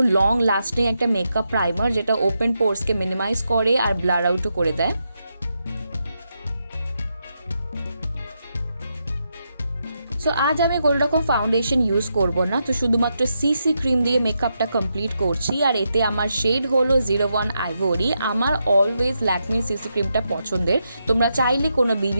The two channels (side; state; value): both; inverted; correlation -0.84